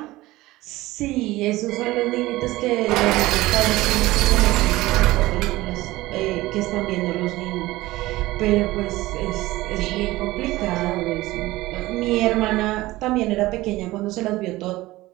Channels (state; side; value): quieter; left; 18.3 dB